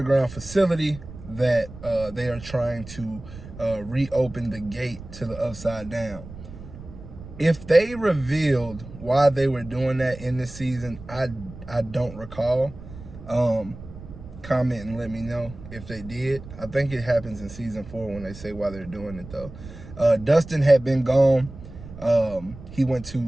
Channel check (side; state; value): right; noise; rumble, 15 dB below the sound